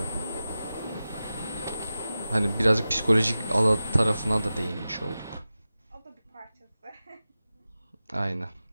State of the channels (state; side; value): inverted; both; correlation -0.94